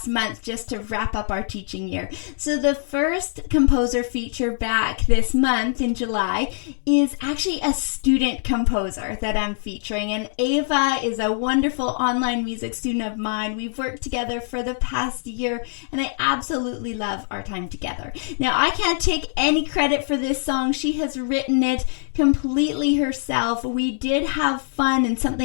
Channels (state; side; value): silent; right; 63 dB below the other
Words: month just to wrap up our teaching year. So the first composer feature back this month in July is actually a student composer that I'm featuring, and Ava is a wonderful online music student of mine. We've worked together for the past year, and I absolutely love our time together. Now, I can't take any credit for this song. She has written it completely herself. We did have fun, and